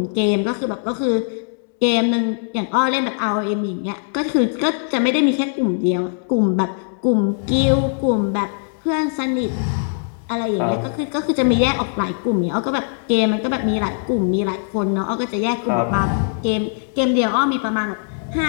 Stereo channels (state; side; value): silent; right; 65 dB below the other